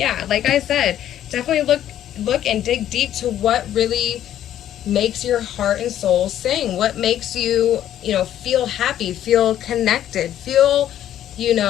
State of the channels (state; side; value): quieter; right; 11.5 dB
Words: like I said, definitely look and dig deep to what really makes your heart and soul sing. What makes you, feel happy, feel connected, feel,